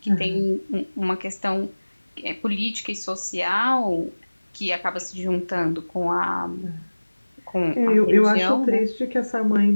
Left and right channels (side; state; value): both; inverted; correlation -1.00